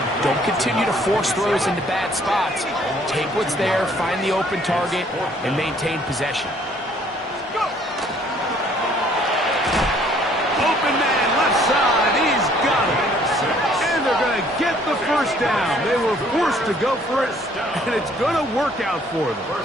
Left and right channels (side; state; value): both; normal; correlation 0.61